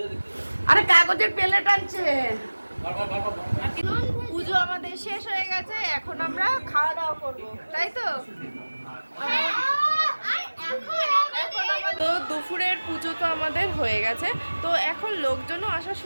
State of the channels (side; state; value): both; inverted; correlation -1.00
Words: আরে কাগজের প্লেট আনছে। পুজো আমাদের শেষ হয়ে গেছে, এখন আমরা খাওয়া দাওয়া করবো, তাই তো? তো দুপুরের পুজো তো আমাদের হয়ে গেছে, তো এখন লোকজনও আসা